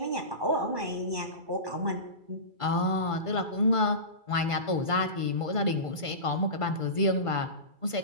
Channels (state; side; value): late; left; 2.3 ms